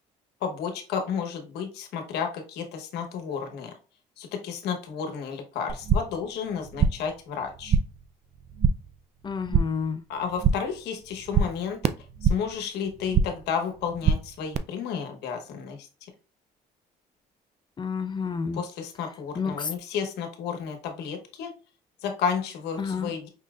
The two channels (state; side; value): normal; both; correlation 0.40